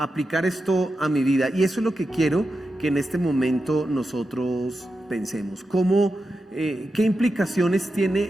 esto a mi vida? Y eso es lo que quiero que en este momento nosotros pensemos. ¿Qué implicaciones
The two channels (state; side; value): normal; both; correlation 0.89